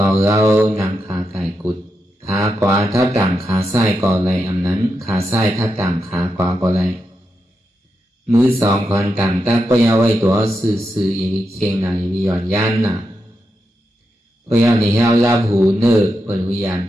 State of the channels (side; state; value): both; normal; correlation 0.86